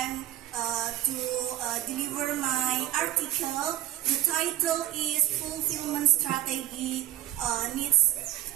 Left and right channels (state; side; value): quieter; left; 13.4 dB